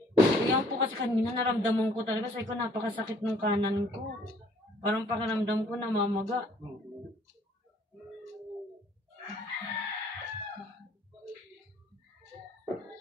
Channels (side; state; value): both; normal; correlation 0.59